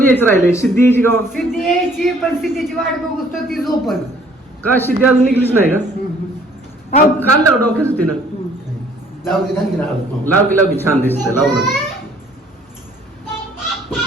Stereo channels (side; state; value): both; normal; correlation 0.59